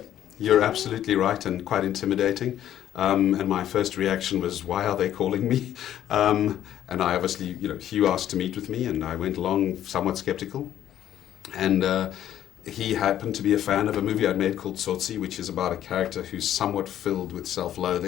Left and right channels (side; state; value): right; quieter; 11.4 dB